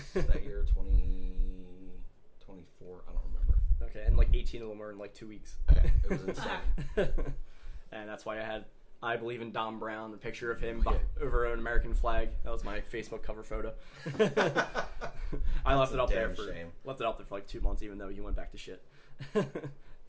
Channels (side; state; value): both; identical; correlation 1.00